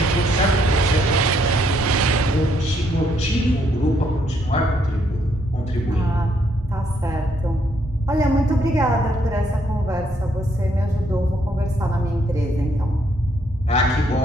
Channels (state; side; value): normal; both; correlation 0.72